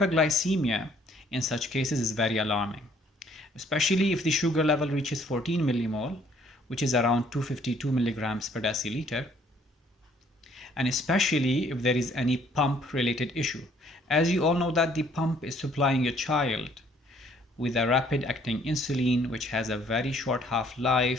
in such cases is very alarming, especially if the sugar level reaches 14 millimole, which is around 252 milligrams per deciliter, and especially if there is any pump related issue. As you all know that the pump is supplying a child with a rapid acting insulin which has a very short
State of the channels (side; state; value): both; normal; correlation 0.62